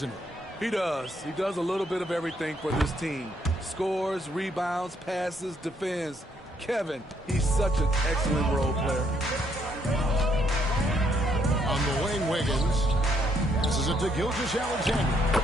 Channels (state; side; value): normal; both; correlation 0.71